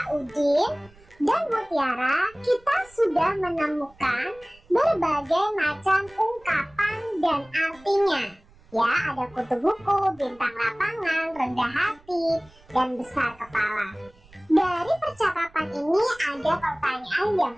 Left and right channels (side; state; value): right; noise; rumble, 27 dB below the sound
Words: Udin dan Mutiara, kita sudah menemukan berbagai macam ungkapan dan artinya. Ya, ada kutu buku, bintang lapangan, rendah hati, dan besar kepala. Dari percakapan ini ada pertanyaan yang